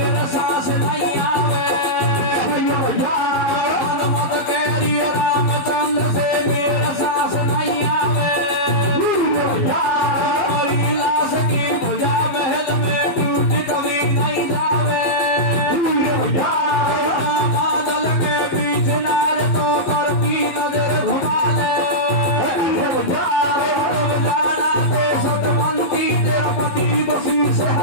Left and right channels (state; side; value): late; right; 11 ms